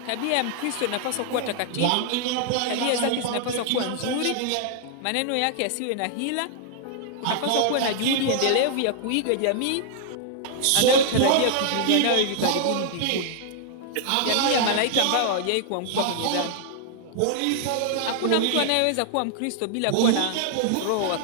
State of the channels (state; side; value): different; both; correlation 0.00